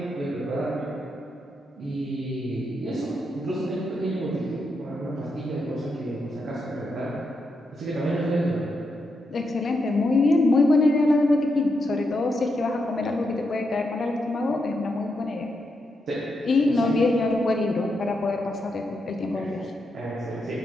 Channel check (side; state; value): both; normal; correlation 0.83